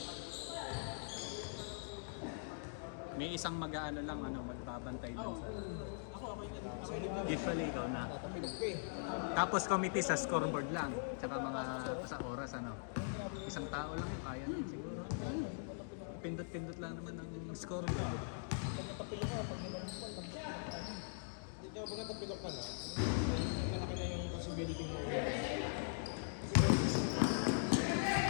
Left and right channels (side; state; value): right; silent; digital silence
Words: May isang mag-aano lang, magbabantay dun sa... Ako, okay na. Okay na. Usually, ikaw na. Tapos committee sa scoreboard lang. Tsaka mga sa oras, Isang tao lang yung kaya nun siguro. Pindot-pindot lang naman ng scoreboard. Pag natapilok ka na, malaki na yung possibility mo.